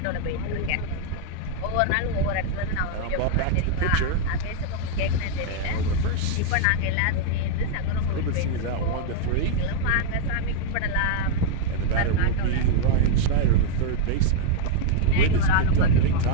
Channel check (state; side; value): different; both; correlation -0.01